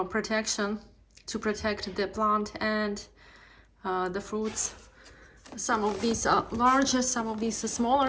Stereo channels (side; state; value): both; identical; correlation 1.00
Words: protection to protect the plant and the fruits. Some of these are larger, some of these are